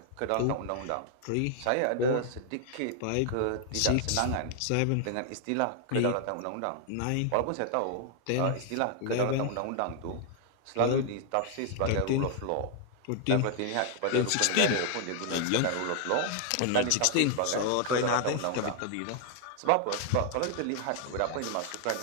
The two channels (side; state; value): both; different; correlation 0.00